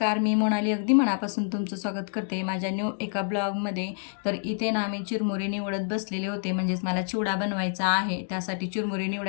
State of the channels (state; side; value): silent; right; digital silence